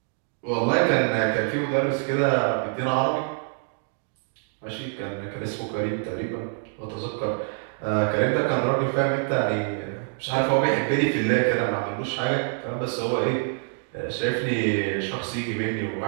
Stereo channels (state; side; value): silent; left; 61 dB below the other